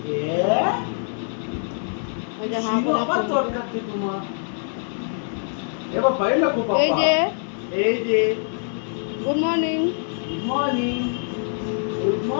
এই যে গুড মর্নিং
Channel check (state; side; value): silent; right; digital silence